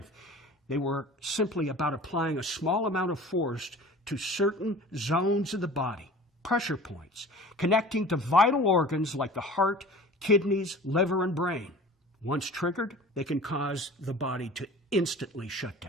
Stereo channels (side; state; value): both; normal; correlation 0.42